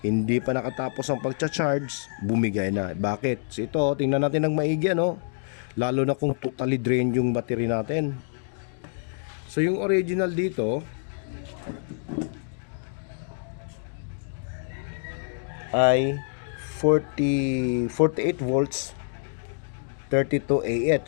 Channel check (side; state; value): right; silent; digital silence